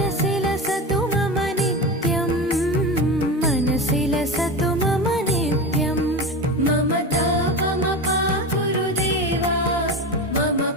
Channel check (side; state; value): both; normal; correlation 0.25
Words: लसतु मम नित्यम् मनसि लसतु मम नित्यम् मम तापमपा गुरुदेवा मम